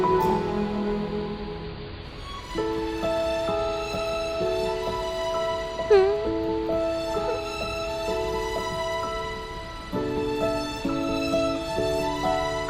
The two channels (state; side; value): identical; both; correlation 1.00